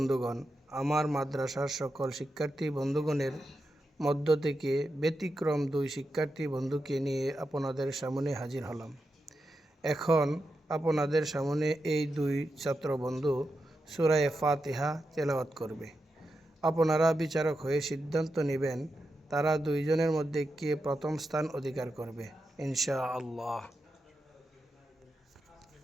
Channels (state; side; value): normal; both; correlation 0.88